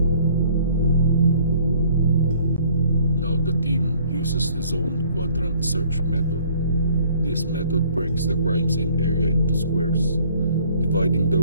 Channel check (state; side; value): inverted; both; correlation -0.58